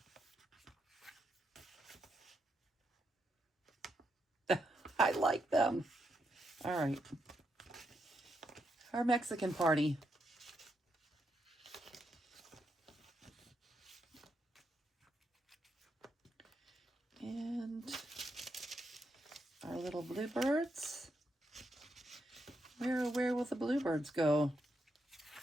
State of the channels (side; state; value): both; normal; correlation 0.81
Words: I like them. All right. Our Mexican party. And our little bluebirds. Where will the bluebirds go?